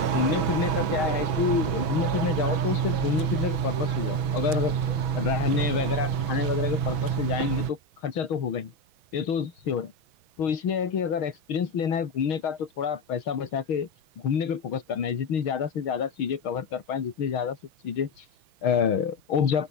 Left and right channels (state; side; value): late; right; 6.2 ms